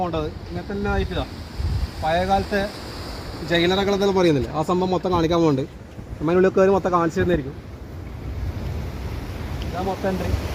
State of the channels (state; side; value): identical; both; correlation 1.00